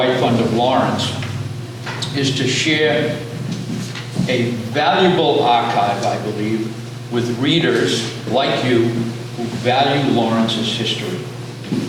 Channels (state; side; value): identical; both; correlation 1.00